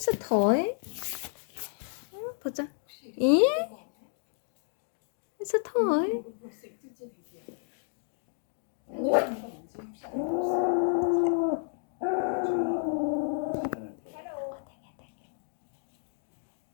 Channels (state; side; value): silent; right; digital silence